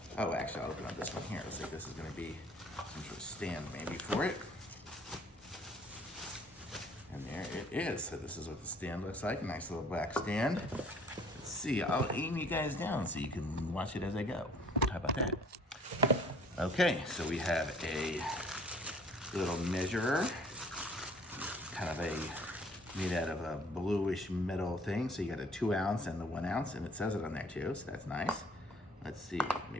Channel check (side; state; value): both; normal; correlation 0.55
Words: Oh, actually, I'll open up this one here. Looks like this is gonna be some sort of stand maybe for it. And there it is. So this is what the stand looks like. A nice little black stand. Let's see, I'll aim you guys down so you can watch it as I go. How about that? Okay, so we have a little measurer, kind of made out of a bluish metal thing. So you got a 2 ounce and the 1 ounce, and it says it on there too, so that's nice. Let's see,